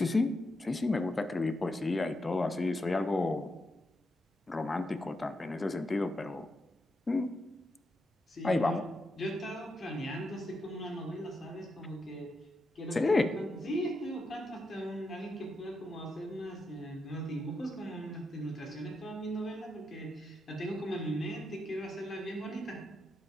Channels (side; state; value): both; normal; correlation 0.84